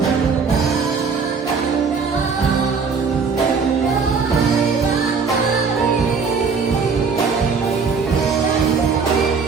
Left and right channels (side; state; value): left; quieter; 5.3 dB